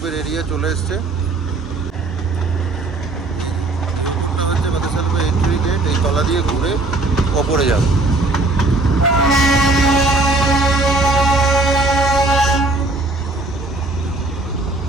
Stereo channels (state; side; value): quieter; left; 3.0 dB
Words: এরিয়া চলে এসছে। হচ্ছে বাতাসা লুপের এন্ট্রি গেট, এই তলা দিয়ে ঘুরে ওপরে যাবে।